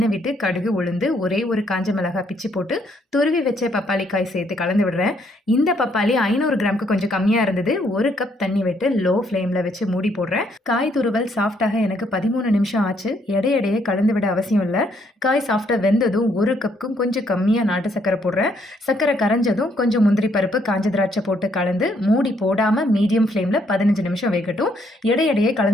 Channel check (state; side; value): normal; both; correlation 0.70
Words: விட்டு கடுகு, உளுந்து, ஒரே ஒரு காஞ்ச மிளகாய் பிச்சு போட்டு துருவி வச்ச பப்பாளி காய் சேர்த்து கலந்து விடுறேன். இந்த பப்பாளி 500 கிராமுக்கு கொஞ்சம் கம்மியா இருந்தது. 1 கப் தண்ணி விட்டு லோ ஃப்ளேம்ல வச்சு மூடி போடுறேன். காய் துருவல் சாஃப்டாக எனக்கு 13 நிமிஷம் ஆச்சு. எடையே கலந்து விட அவசியம் இல்ல. காய் சாஃப்டா வெந்ததும் 1 கப்புக்கும் கொஞ்சம் கம்மியா நாட்டு சக்கரை போடுறேன். சக்கரை கரைஞ்சதும் கொஞ்சம் முந்திரி பருப்பு, காஞ்ச திராட்சை போட்டு கலந்து மூடி போடாம மீடியம் ஃப்ளேம்ல 15 நிமிஷம் வேகட்டும். எடையே